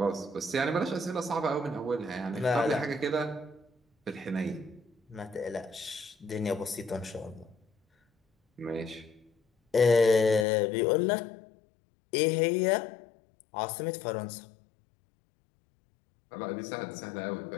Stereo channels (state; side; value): drops out; right; at 10.5 s